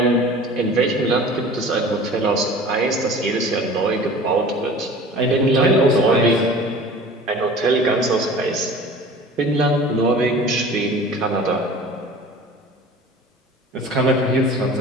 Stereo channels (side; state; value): both; normal; correlation 0.42